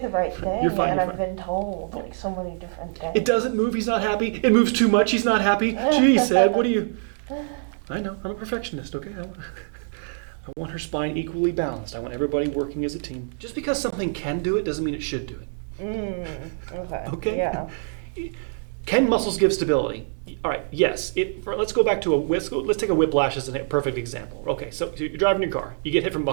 right thing, You're fine, and you're I've fine. been told like so many different things. It doesn't move, he's not happy. It moves too much, he's not happy. Geez, Ed, what do you... I know, I'm a perfectionist, okay? I want her spine equally balanced. I want everybody working as a team. Just because something can do it doesn't mean it should do it. Okay. Okay? Yeah. Can muscles give stability? All right, yes. Let's go back to let's take a whiplash as a perfect example. Okay, so you're driving your car, you get hit from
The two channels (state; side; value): silent; left; digital silence